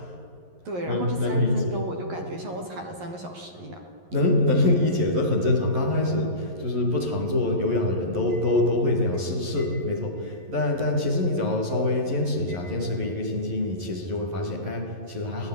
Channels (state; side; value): late; left; 11 ms